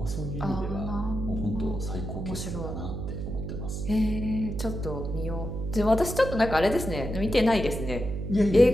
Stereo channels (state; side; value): noise; right; hum, 5 dB below the sound